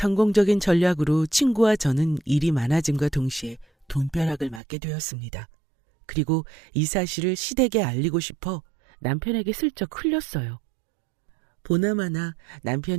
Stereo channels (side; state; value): left; drops out; at 4.6 s